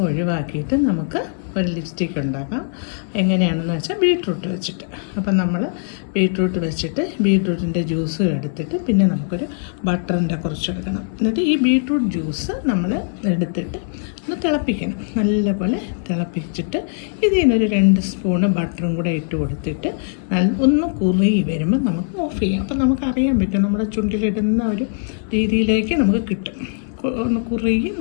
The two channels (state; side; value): silent; right; digital silence